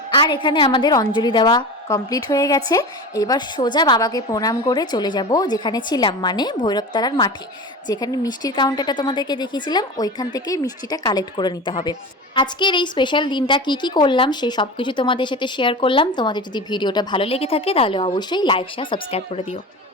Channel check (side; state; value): both; normal; correlation 0.29